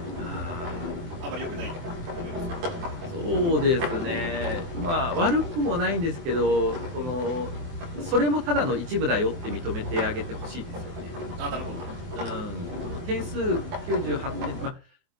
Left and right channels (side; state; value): left; late; 24 ms